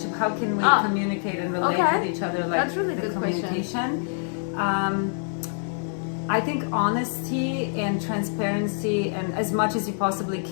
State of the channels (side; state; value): right; silent; digital silence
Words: How can we communicate and relate with each other? Like that's really the good communication. I think honesty and transparency, and as much as you possibly